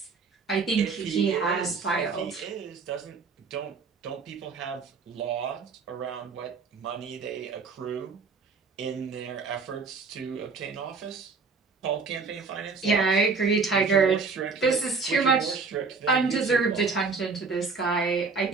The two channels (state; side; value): quieter; left; 4.7 dB